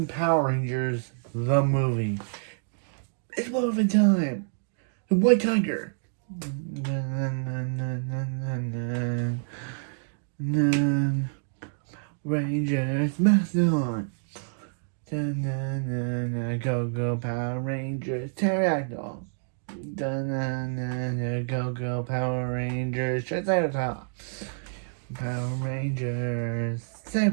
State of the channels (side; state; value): left; silent; digital silence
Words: Power Rangers, the movie. It's Morphin time! The White Tiger! Rangers, Mastodon! Go Go Power Rangers, Pterodactyl! Go Go Power Rangers, Triceratops! Power Rangers,